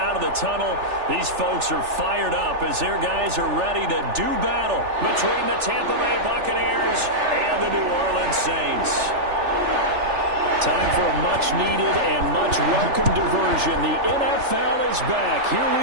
of the tunnel. These folks are fired up as their guys are ready to do battle between the Tampa Bay Buccaneers and the New Orleans Saints. Time for a much-needed and much-welcome diversion. The NFL is back. Here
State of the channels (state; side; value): late; left; 3.4 ms